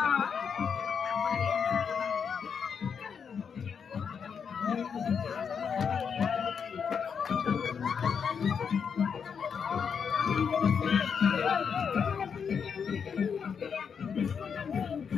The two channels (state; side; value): quieter; right; 6.6 dB